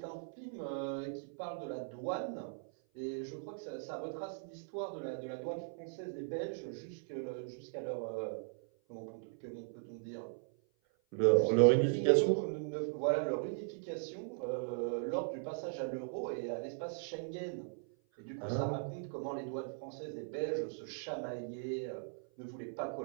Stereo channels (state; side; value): silent; left; 52 dB below the other